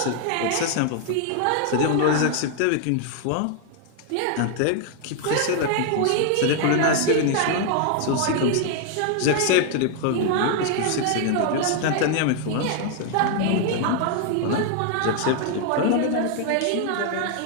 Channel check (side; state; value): both; different; correlation 0.00